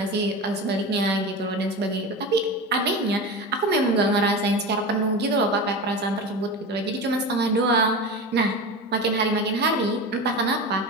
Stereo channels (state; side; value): normal; both; correlation 0.26